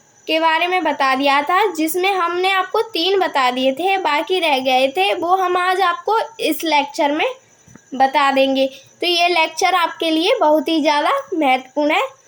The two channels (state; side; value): identical; both; correlation 1.00